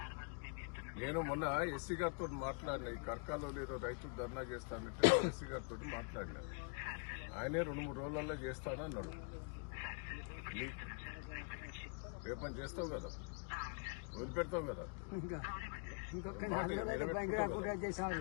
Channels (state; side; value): quieter; right; 38.6 dB